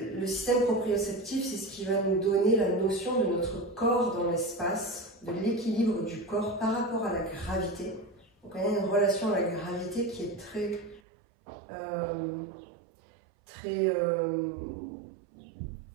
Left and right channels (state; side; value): drops out; left; at 11.0 s